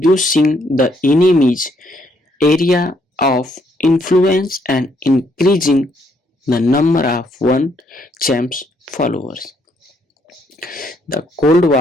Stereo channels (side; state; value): both; normal; correlation 0.71